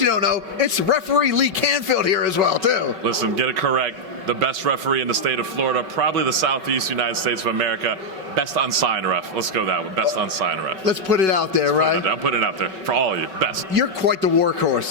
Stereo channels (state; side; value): late; left; 5.3 ms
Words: you don't know, it's Referee Lee Canfield here as well, too. Listen, get it correct. The best referee in the state of Florida, probably the Southeast United States of America. Best unsigned ref. Let's go that one. Best unsigned ref. Let's put it out there, right? I'm putting it out there for all of you. Best. You're quite the